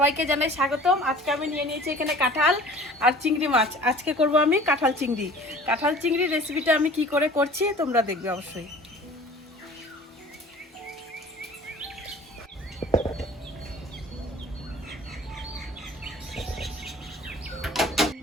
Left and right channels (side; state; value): both; normal; correlation 0.46